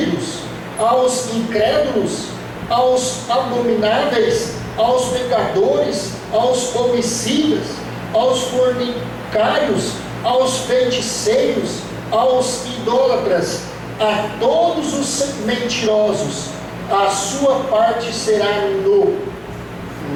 aos incrédulos, aos abomináveis, aos pecadores, aos homicidas, aos fornicários, aos feiticeiros, aos idólatras, a todos os mentirosos, a sua parte será no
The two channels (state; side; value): identical; both; correlation 1.00